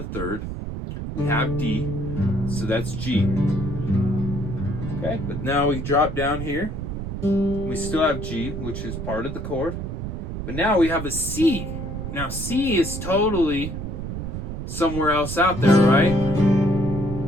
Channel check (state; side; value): noise; right; rumble, 5 dB below the sound